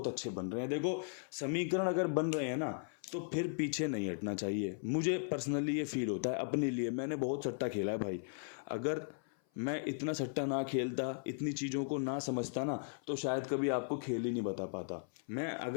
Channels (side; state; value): right; silent; 53 dB below the other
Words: अच्छे बन रहे हैं। देखो समीकरण अगर बन रहे हैं ना तो फिर पीछे नहीं हटना चाहिए। मुझे पर्सनली ये फील होता है अपने लिए, मैंने बहुत सट्टा खेला है भाई। अगर मैं इतना सट्टा ना खेलता, इतनी चीज़ों को ना समझता ना, तो शायद कभी आपको खेल ही नहीं बता पाता। मैं